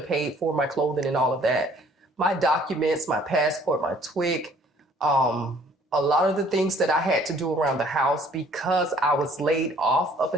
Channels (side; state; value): both; normal; correlation 0.57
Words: paid for my clothing and all of that, my documents, my passport, my TWIC, a lot of the things that I had to do around the house, because I was laid off up